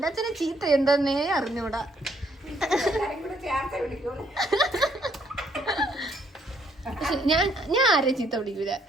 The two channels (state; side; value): normal; both; correlation 0.69